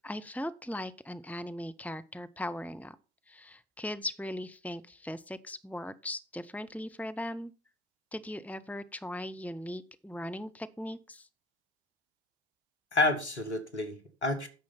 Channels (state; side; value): normal; both; correlation 0.44